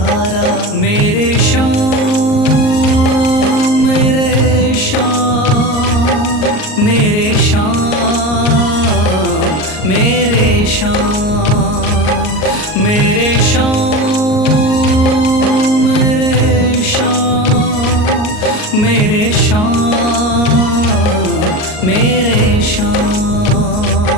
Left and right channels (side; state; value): right; late; 38 ms